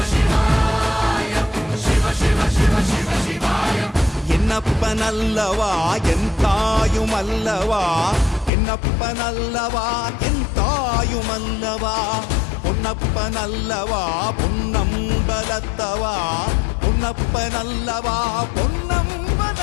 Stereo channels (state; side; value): drops out; right; at 8.5 s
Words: என்னப்பனல்லவா என் தாயுமல்லவா, என்னப்பனல்லவா என் தாயுமல்லவா, பொன்னப்பனல்லவா பொன்னம்பலத்தவா, பொன்னப்பனல்லவா